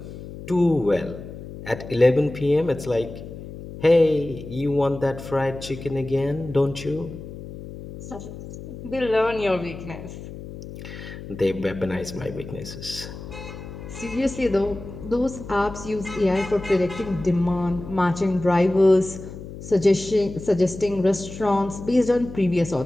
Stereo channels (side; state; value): left; noise; hum, 12 dB below the sound